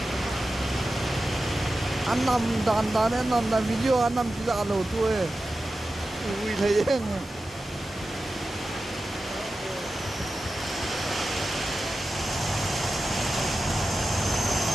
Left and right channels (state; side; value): normal; both; correlation 0.93